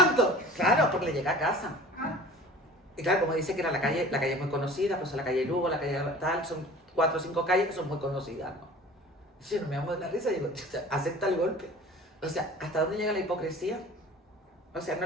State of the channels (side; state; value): both; normal; correlation 0.43